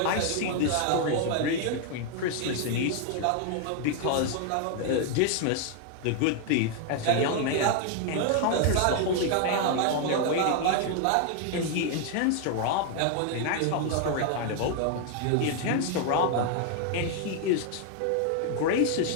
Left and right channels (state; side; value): different; both; correlation 0.00